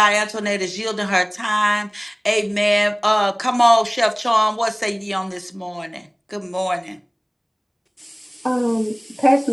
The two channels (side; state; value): both; identical; correlation 1.00